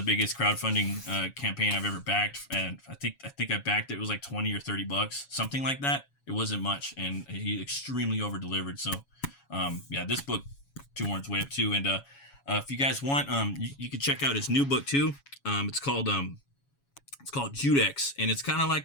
biggest crowdfunding campaign I've ever backed, and I think I backed it. It was like $20 or $30, something like that. It wasn't much, and he extremely over delivered. So, yeah, this book, Two Horns Way Up too. And if you guys want, you can check out his new book too. It's called JUDEX, and it's kind of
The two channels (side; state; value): right; late; 7.2 ms